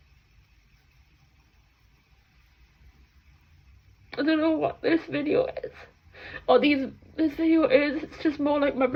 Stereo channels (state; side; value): identical; both; correlation 1.00